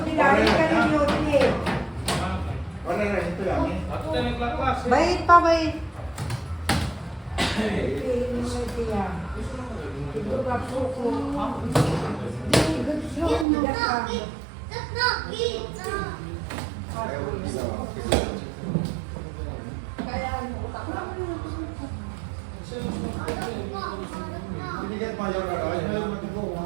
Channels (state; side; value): drops out; left; at 13.5 s